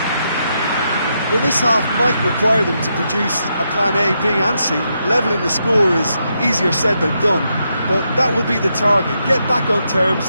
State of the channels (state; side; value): inverted; both; correlation -0.82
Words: Well, this half might require them to produce a plan A, B and C. Levelling the score is easier said than done, but that will be the target. Get back on terms